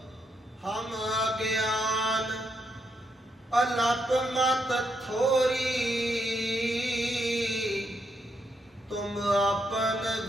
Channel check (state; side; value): normal; both; correlation 0.79